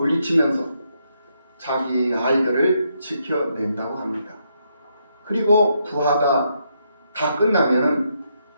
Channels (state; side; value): inverted; both; correlation -0.78